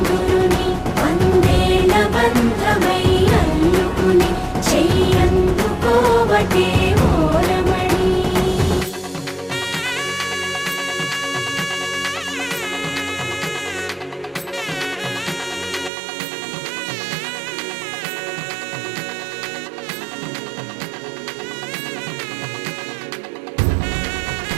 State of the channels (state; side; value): drops out; left; at 15.9 s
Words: వందేళ్ల బంధమై అల్లుకుని చెయ్యందుకోవటే ఓరమణి.